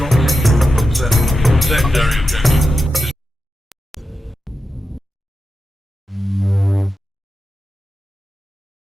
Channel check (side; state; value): both; normal; correlation 0.90